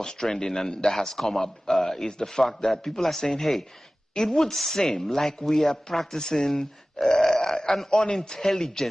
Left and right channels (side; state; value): both; normal; correlation 0.97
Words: trending and that has come up is the fact that people are saying, hey, it would seem like we are practicing an